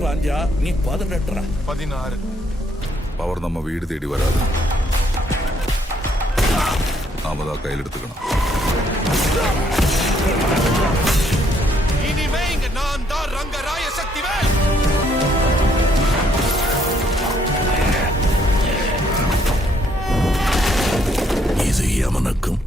பாஞ்சா நீ 18. 16. பவர் நம்ம வீடு தேடி வராது, நாம தான் கையில் எடுத்துக்கணும். இனிமே இங்க நான் தான் ரங்கராய சக்திவேல். இது யமனுக்கும்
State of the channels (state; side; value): normal; both; correlation 0.69